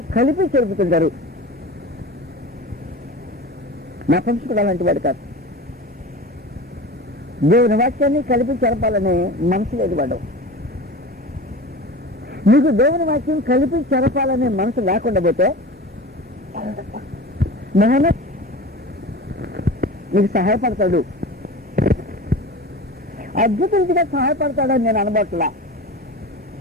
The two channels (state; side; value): normal; both; correlation 0.33